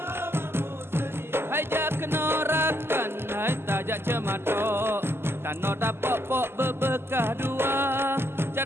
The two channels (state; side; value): late; left; 0.12 ms